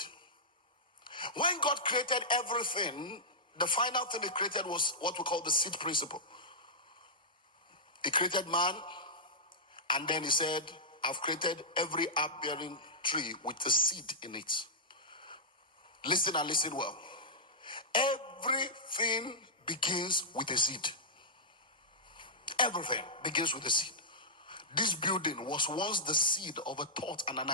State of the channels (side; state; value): both; normal; correlation -0.11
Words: When God created everything, the final thing he created was what we call the seed principle. He created man, and then he said, I've created every herb-bearing tree with a seed in it. Listen and listen well. Everything begins with a seed. Everything begins with a seed. This building was once the seed of a thought and an